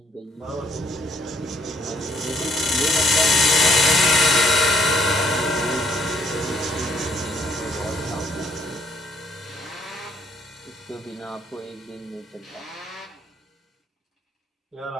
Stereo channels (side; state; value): both; normal; correlation 0.68